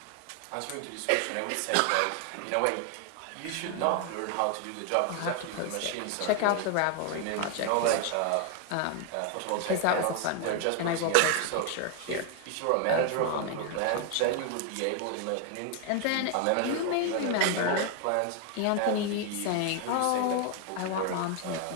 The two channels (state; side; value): different; both; correlation 0.00